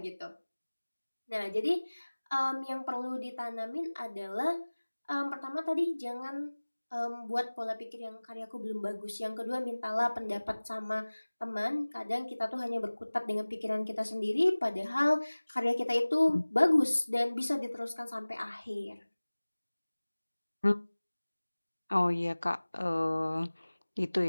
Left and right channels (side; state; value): both; inverted; correlation -1.00